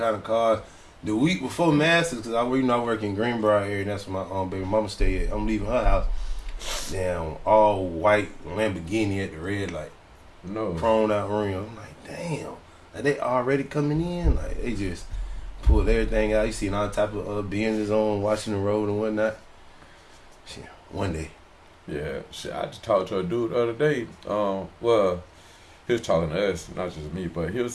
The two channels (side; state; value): both; identical; correlation 1.00